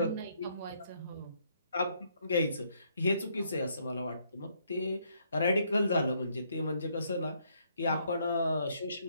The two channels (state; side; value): inverted; both; correlation -0.71